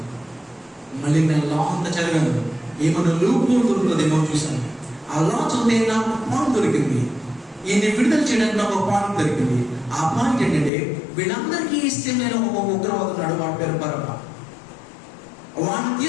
మళ్ళీ నేను లా అంతా చదివాను, ఏమన్నా లూప్ దొరుకుతుందేమో చూశాను. ఆ లా చదివితే నాకు పాయింట్ దొరికింది, ఈయన్ని విడుదల చేయడానికి నాకు ఒక పాయింట్ దొరికింది. ఆ పాయింట్ ఏంటంటే, వీళ్ళందరికీ ఇష్టం లేని ఒక ఉగ్రవాదున్నాడు, వాడి పేరు బరబ్బా. వాడిని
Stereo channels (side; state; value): right; drops out; at 10.7 s